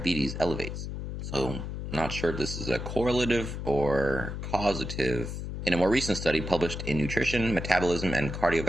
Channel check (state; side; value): noise; left; hum, 5 dB below the sound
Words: elevates." So, not sure if this is a correlative or causative. In a more recent study published in Nutrition, Metabolism, and